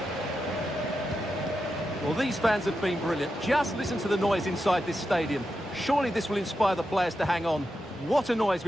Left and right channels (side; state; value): both; normal; correlation 0.88